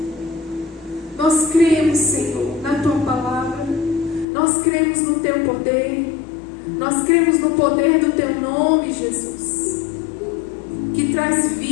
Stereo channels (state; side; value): drops out; right; at 4.2 s